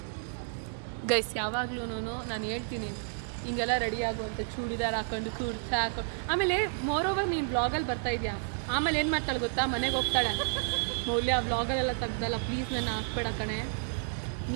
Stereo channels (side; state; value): left; silent; digital silence